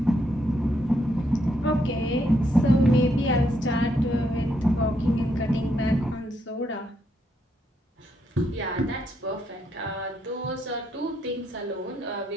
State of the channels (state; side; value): normal; both; correlation 0.76